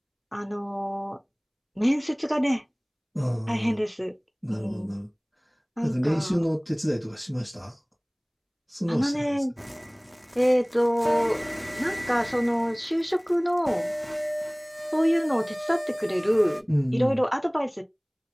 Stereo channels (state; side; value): identical; both; correlation 1.00